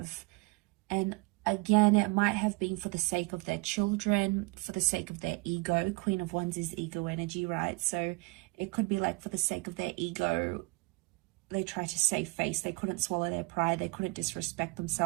And again, it might have been for the sake of their children, for the sake of their ego. Queen of Wands is ego energy, right? So it could be like for the sake of their ego, they try to save face. They couldn't swallow their pride. They couldn't disrespect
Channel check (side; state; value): left; quieter; 27.5 dB